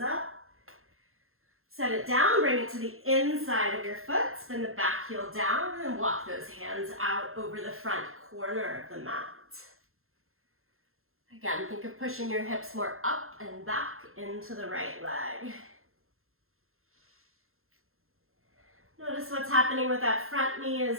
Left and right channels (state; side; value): late; left; 0.61 ms